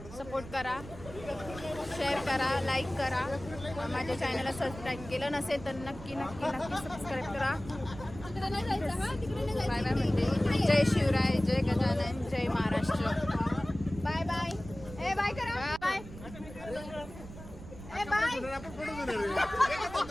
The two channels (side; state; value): right; noise; rumble, 14 dB below the sound